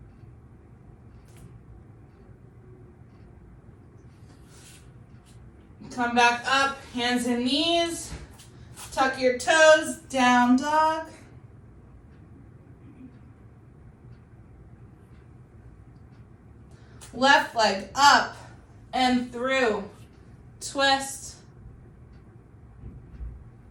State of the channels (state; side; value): identical; both; correlation 1.00